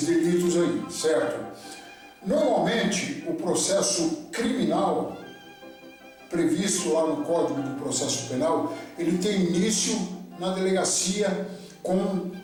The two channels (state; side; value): identical; both; correlation 1.00